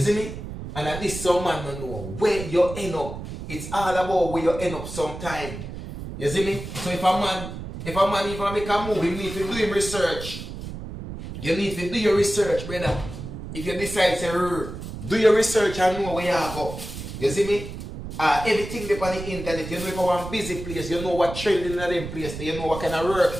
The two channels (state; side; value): noise; right; rumble, 9 dB below the sound